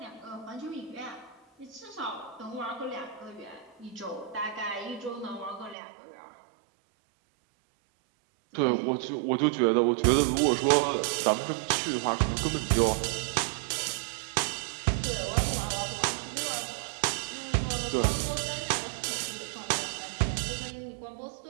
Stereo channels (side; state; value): left; drops out; at 5.8 s